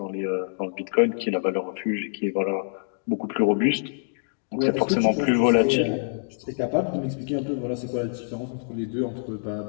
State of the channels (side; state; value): right; silent; 61 dB below the other